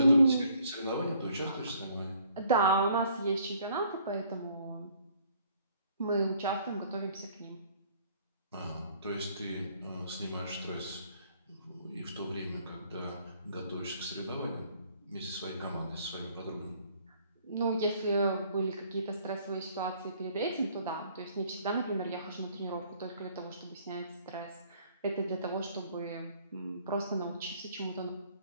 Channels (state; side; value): inverted; both; correlation -0.61